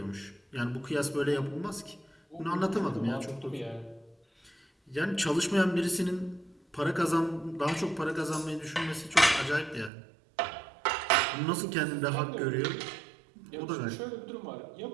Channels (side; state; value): left; drops out; at 9.9 s